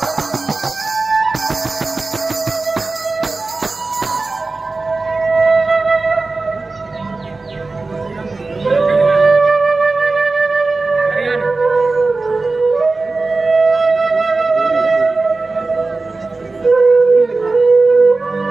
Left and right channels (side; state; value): left; quieter; 3.6 dB